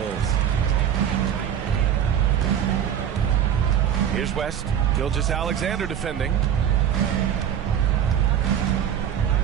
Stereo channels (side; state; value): left; quieter; 9.4 dB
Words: Here's West. Gilgeous Alexander defending.